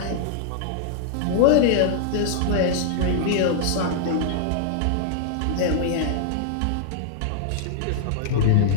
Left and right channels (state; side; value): different; both; correlation -0.01